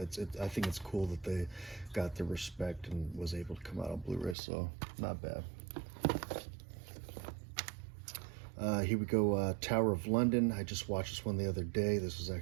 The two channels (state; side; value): drops out; left; at 4.4 s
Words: I think it's cool that they got the respect and was able to come out on Blu-ray, so not bad. Here we go, Tower of London. I just watched this one the other day. This was